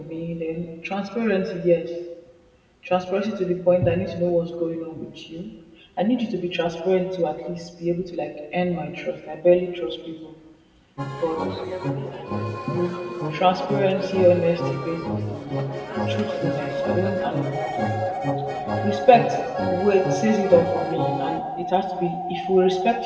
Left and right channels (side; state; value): both; identical; correlation 1.00